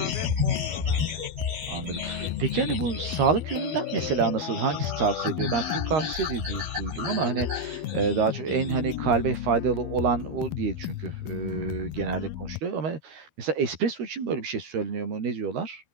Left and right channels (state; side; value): late; left; 12 ms